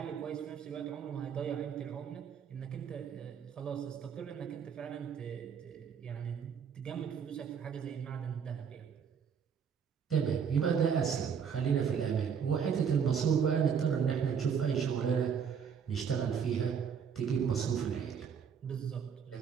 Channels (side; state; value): left; quieter; 7.1 dB